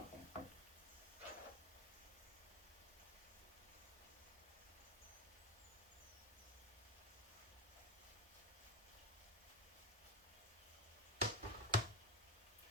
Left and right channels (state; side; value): normal; both; correlation 0.15